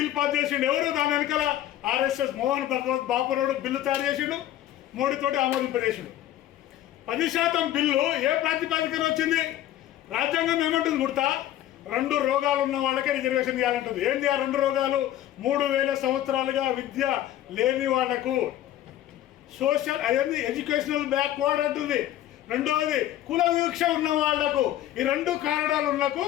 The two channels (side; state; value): right; quieter; 12.8 dB